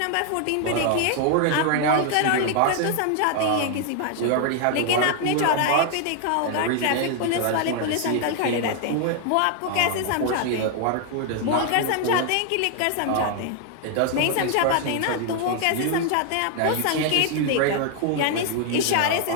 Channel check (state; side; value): different; both; correlation 0.00